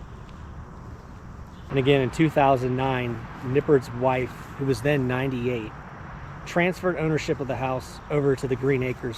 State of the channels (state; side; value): identical; both; correlation 1.00